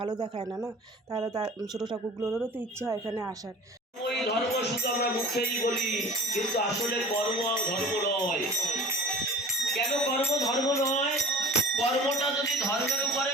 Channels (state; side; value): normal; both; correlation 0.40